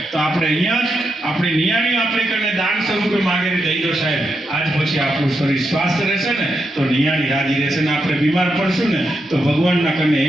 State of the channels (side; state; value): both; normal; correlation 0.84